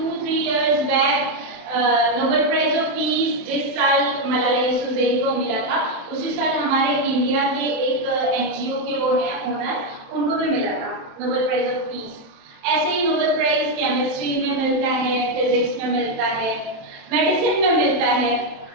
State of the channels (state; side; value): late; left; 27 ms